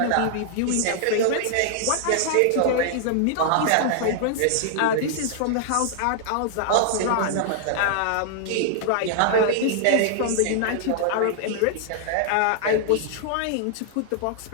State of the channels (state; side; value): different; both; correlation -0.01